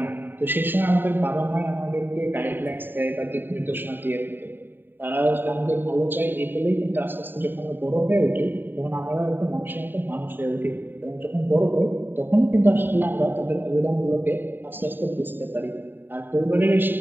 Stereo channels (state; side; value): late; left; 0.094 ms